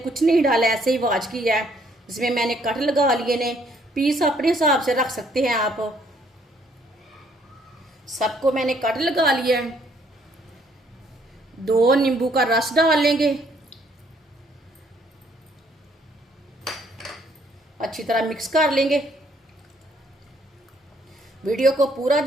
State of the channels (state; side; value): normal; both; correlation 0.66